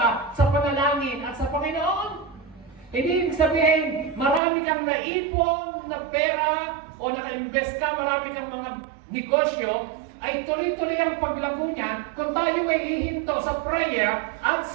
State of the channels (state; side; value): drops out; left; at 4.4 s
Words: sa panalangin at sa Panginoon. Hindi ibig sabihin, marami kang naipon na pera o naka-invest ka, marami kang mga negosyo, ay tuloy-tuloy ang paglago niya kung tayo ay hihinto sa prayer at